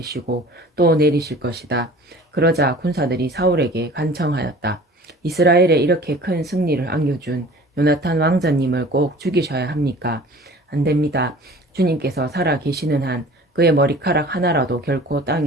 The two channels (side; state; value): both; normal; correlation 0.45